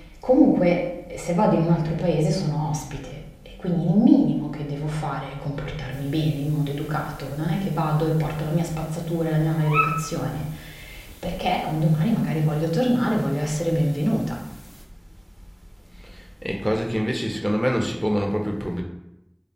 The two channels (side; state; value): both; identical; correlation 1.00